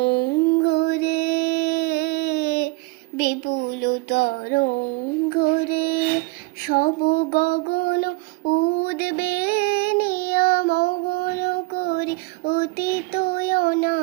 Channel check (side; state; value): left; quieter; 24.8 dB